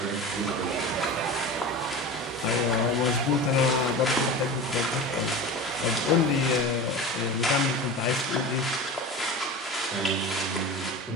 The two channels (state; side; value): normal; both; correlation 0.30